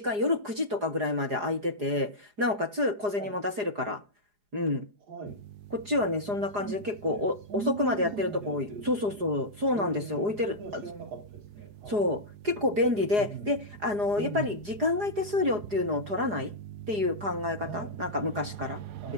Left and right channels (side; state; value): left; late; 4.8 ms